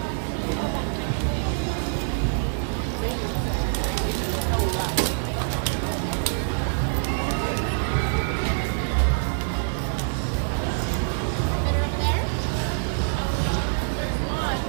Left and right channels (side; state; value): left; silent; digital silence